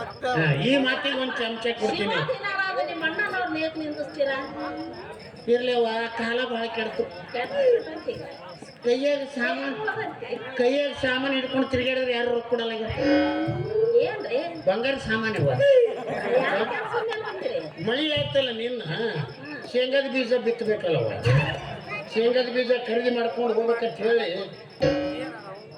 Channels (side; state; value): both; identical; correlation 1.00